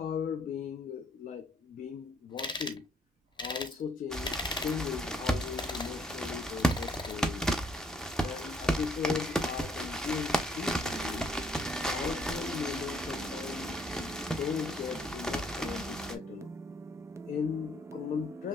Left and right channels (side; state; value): both; normal; correlation 0.66